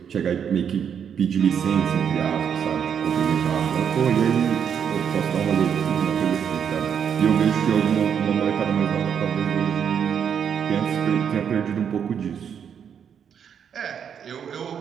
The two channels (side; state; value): left; quieter; 7.9 dB